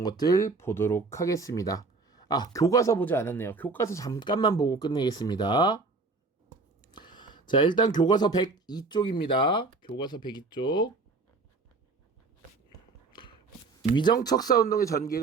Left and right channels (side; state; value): left; quieter; 3.9 dB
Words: 것들 보도록 하겠습니다. 교과서 보지 않았네요. 교과서 잠깐만 보고 끝내겠습니다. 자, 일단 교과서 102쪽입니다. 교과서 102쪽. 위정척사운동의